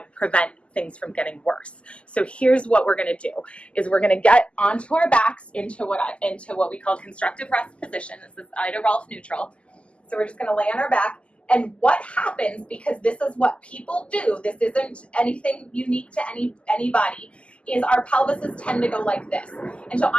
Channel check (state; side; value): late; right; 0.055 ms